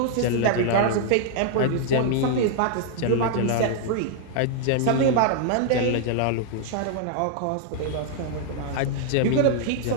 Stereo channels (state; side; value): different; both; correlation -0.01